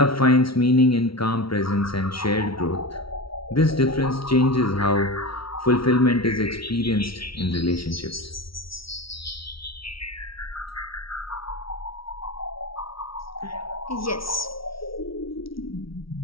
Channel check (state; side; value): late; right; 0.75 ms